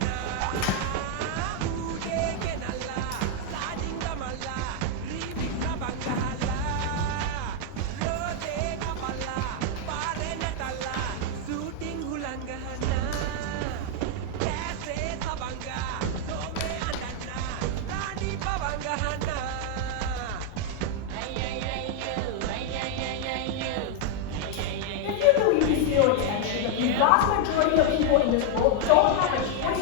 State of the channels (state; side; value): different; both; correlation 0.00